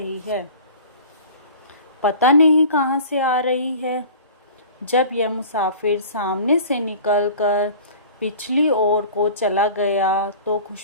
है, पता नहीं कहाँ से आ रही है। जब यह मुसाफिर सामने से निकलकर पिछली ओर को चला गया तो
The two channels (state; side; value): inverted; both; correlation -0.42